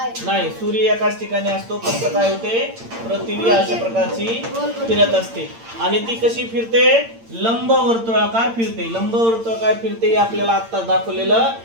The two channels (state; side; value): late; left; 8.8 ms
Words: नाही. सूर्य एकाच ठिकाणी असतो. फक्त काय होते, पृथ्वी अशा प्रकारची फिरत असते. आणि ती कशी फिरते? लंबवर्तुळाकार फिरते. लंबवर्तुळाकार फिरते हे आपल्याला आता दाखवलेलं